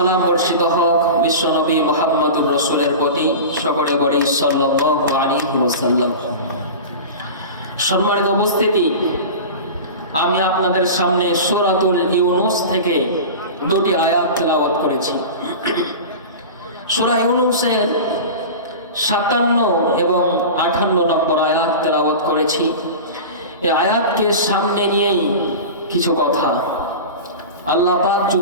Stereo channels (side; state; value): both; inverted; correlation -0.30